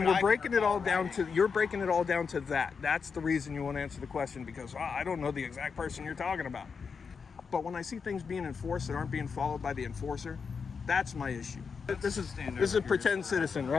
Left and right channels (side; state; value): right; quieter; 5.6 dB